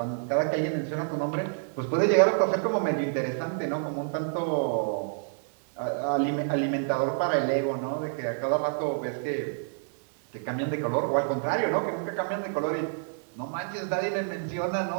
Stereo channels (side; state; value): left; silent; digital silence